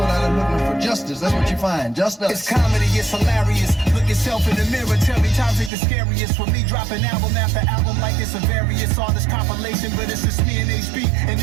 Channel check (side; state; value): left; drops out; at 5.7 s